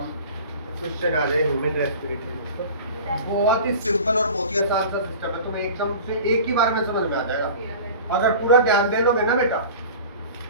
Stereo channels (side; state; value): both; inverted; correlation -0.39